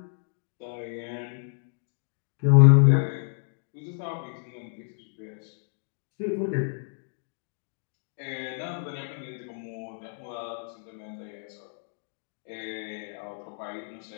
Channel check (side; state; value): right; silent; digital silence